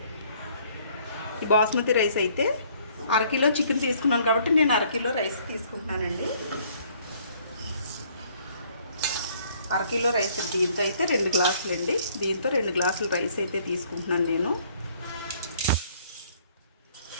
ఈ బాస్మతి రైస్ అయితే 1/2 కిలో చికెన్ తీసుకున్నాను కాబట్టి నేను 1/2 కిలో రైస్ తీసుకుంటున్నానండి. 1/2 కిలో రైస్ దీంతో అయితే 2 గ్లాసులు అండి. దీంతో 2 గ్లాసులు రైస్ అయితే తీసుకుంటున్నాను నేను.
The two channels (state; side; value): inverted; both; correlation -0.61